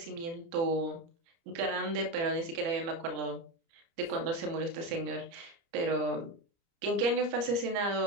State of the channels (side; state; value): left; late; 30 ms